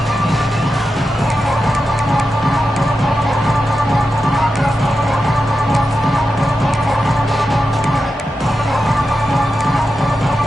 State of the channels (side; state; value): both; normal; correlation 0.90